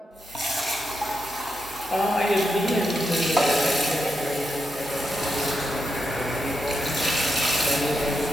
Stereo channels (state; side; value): normal; both; correlation 0.85